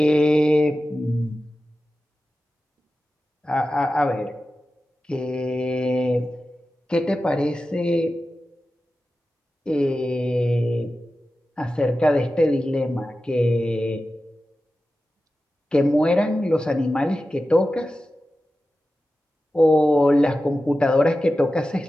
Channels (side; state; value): both; normal; correlation 0.93